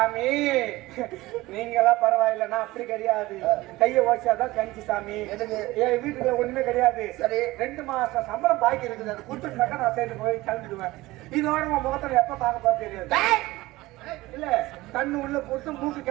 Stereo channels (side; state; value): left; quieter; 19.0 dB